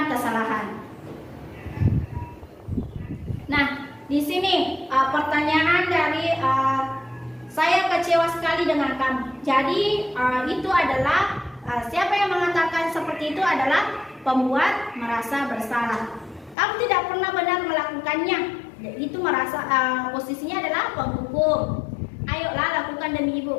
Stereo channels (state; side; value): drops out; right; at 16.6 s